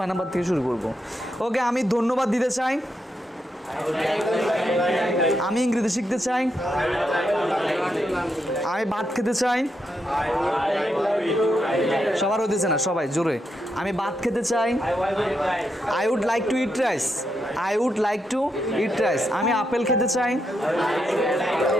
নাম্বার থেকে শুরু করবো। ওকে, আমি ধন্যবাদ দিতে চাই। আমি ইংরেজি শিখতে চাই। আমি ভাত খেতে চাই। সবার হতেছে না, সবাই জোরে। আমি ভাত খেতে চাই। I would like to eat rice. I would like to eat rice. আমি আপেল খেতে চাই।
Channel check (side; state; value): both; normal; correlation 0.83